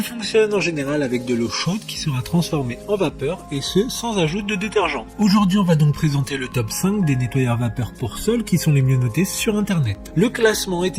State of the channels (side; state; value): both; identical; correlation 1.00